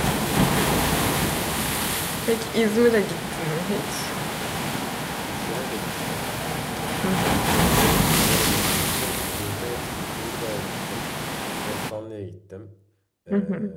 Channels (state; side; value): identical; both; correlation 1.00